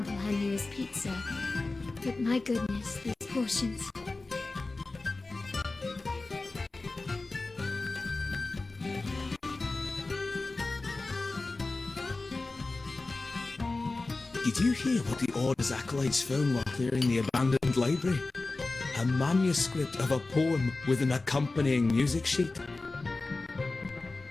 her newest pizza, but my goodness, these portions. Did you hear what the Order's acolytes found while clearing the abandoned library? A manuscript of a poem with an accompanying music sheet.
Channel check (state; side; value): quieter; right; 3.4 dB